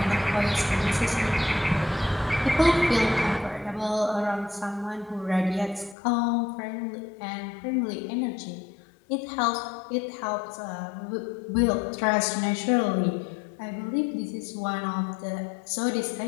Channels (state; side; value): drops out; right; at 6.0 s